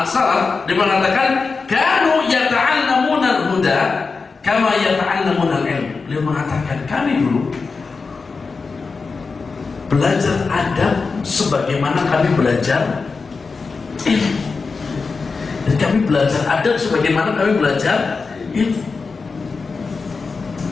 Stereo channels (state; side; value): quieter; right; 4.5 dB